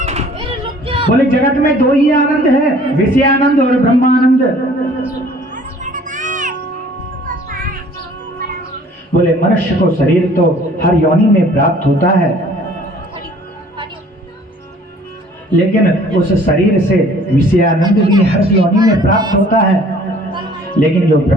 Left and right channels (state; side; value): normal; both; correlation 0.53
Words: बोले जगत में 2 ही आनंद है, विषयानंद और ब्रह्मानंद। बोले मनुष्य को शरीर तो हर योनि में प्राप्त होता है, लेकिन उस शरीर से विषयानंद भी हर योनि में प्राप्त होता है, लेकिन जो